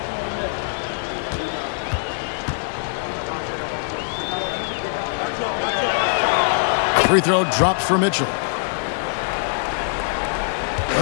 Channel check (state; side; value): silent; right; digital silence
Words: Free throw drops for Mitchell.